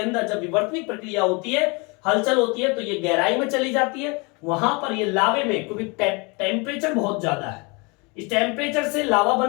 जब विवर्तनिक प्रक्रिया होती है, हलचल होती है, तो ये गहराई में चली जाती है। वहां पर ये लावे में, क्योंकि टेम्परेचर बहुत ज्यादा है, इस टेम्परेचर से लावा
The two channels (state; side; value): quieter; right; 29.7 dB